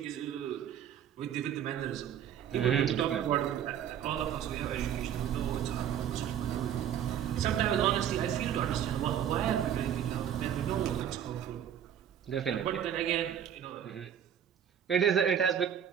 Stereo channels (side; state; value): left; quieter; 9.5 dB